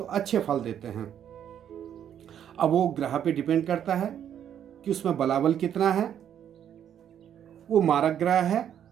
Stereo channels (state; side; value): quieter; left; 9.6 dB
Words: अच्छे फल देते हैं। अब वो ग्रह पे डिपेंड करता है कि उसमें बलाबल कितना है, वो मारक ग्रह है